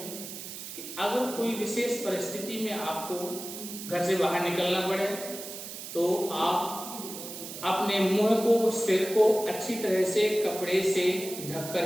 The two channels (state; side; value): noise; right; hiss, 10 dB below the sound